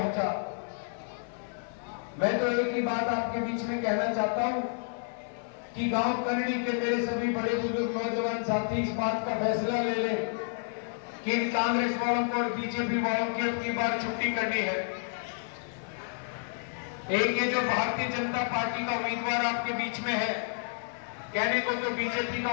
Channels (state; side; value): silent; right; 56 dB below the other